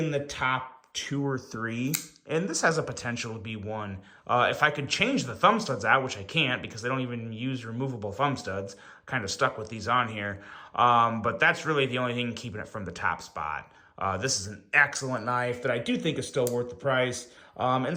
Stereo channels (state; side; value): identical; both; correlation 1.00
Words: the top 2 or 3, and this has a potential to be 1. If I could change the thumb studs out, which I can't because they don't even use removable thumb studs, kind of stuck with these on here, but that's really the only thing keeping it from the top spot. This is an excellent knife that I do think is still worth the price, and